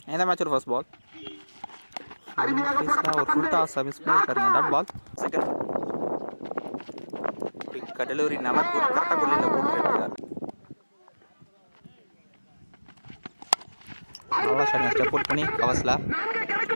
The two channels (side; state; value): both; inverted; correlation -1.00